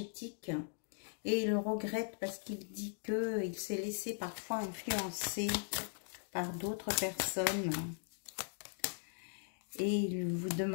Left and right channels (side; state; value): right; silent; digital silence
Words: Et il regrette parce qu'il dit qu'il s'est laissé parfois influencer par d'autres personnes. Et il vous